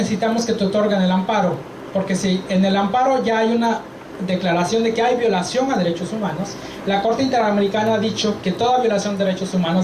que te otorguen el amparo, porque si en el amparo ya hay una declaración de que hay violación a derechos humanos, la Corte Interamericana ha dicho que toda violación de derechos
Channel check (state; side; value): identical; both; correlation 1.00